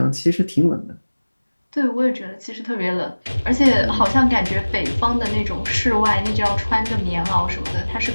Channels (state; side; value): inverted; both; correlation -1.00